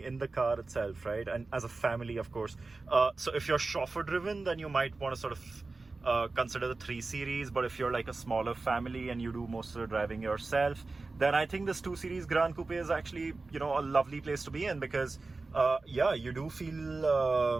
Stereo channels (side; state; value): left; quieter; 3.6 dB